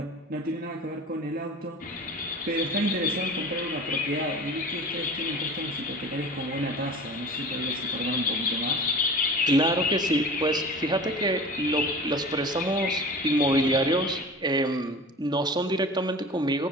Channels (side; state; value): both; normal; correlation 0.38